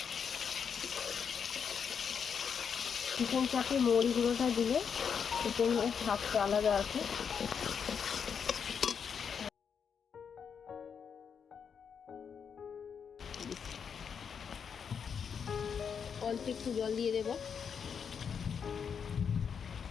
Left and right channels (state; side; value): quieter; right; 6.9 dB